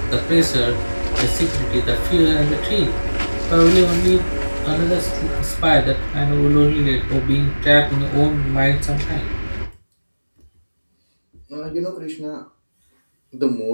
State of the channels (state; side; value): inverted; both; correlation -1.00